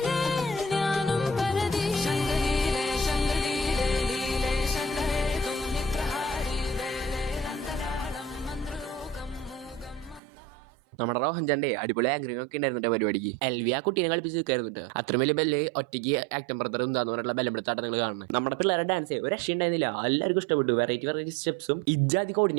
നമ്മുടെ റോഹൻചാന്റെ അടിപൊളി ആങ്കറിംഗ് ഒക്കെ ഉണ്ടായിരുന്നിട്ട് പരിപാടിക്ക്. എൽവി ആ കുട്ടീനെ കളിപ്പിച്ച് നിൽക്കായിരുന്നിട്ട്. അത്ര വലിയ ബെല്ല് ഒറ്റയ്ക്ക് ആക്ടം ബ്രദർ എന്താന്ന് പറഞ്ഞിട്ടുള്ള ബലപ്പെടുത്താട്ട നിങ്ങൾ കാണുന്നത്. നമ്മുടെ പിള്ളേരുടെ ഡാൻസ് ഒരു രക്ഷ ഉണ്ടായിരുന്നില്ല. എല്ലാവർക്കും ഇഷ്ടപ്പെട്ടു. വെറൈറ്റി സ്റ്റെപ്സും ഇജാതി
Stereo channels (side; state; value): left; drops out; at 10.2 s